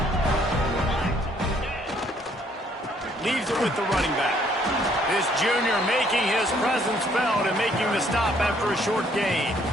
Leaves it with the running back. This junior making his presence felt and making the stop after a short gain.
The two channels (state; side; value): normal; both; correlation 0.65